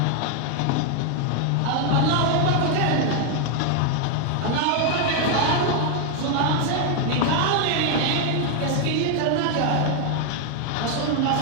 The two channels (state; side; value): different; both; correlation 0.00